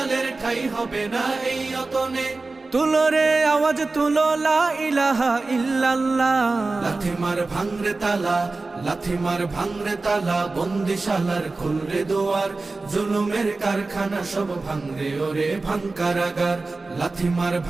ঠাই হবে না এই অতনে। তুলো রে আওয়াজ তুলো লা ইলাহা ইল্লাল্লাহ। লাথি মার ভাঙরে তালা, লাথি মার ভাঙরে তালা, বন্দিশালার খুলরে দুয়ার, জুলুমের কারখানা সব ভাঙরে ওরে ভাঙ কারাগার। লাথি মার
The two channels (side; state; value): left; quieter; 3.5 dB